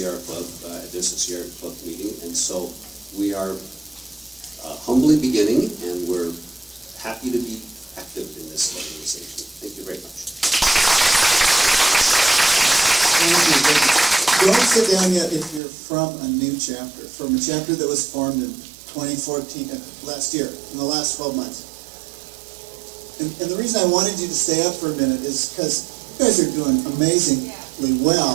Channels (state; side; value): drops out; left; at 15.6 s